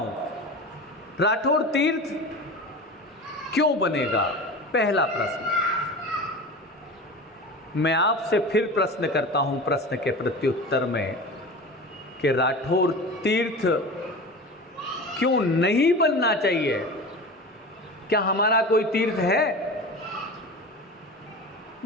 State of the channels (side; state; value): both; normal; correlation 0.32